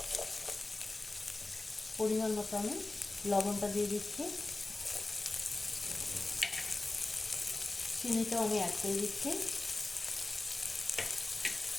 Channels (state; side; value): quieter; right; 3.0 dB